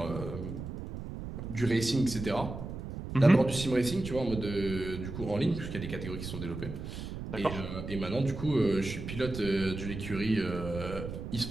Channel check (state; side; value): noise; right; rumble, 8 dB below the sound